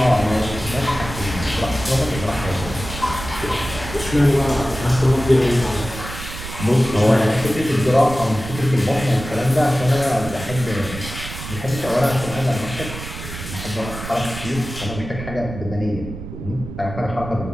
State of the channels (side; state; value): right; noise; rumble, 10 dB below the sound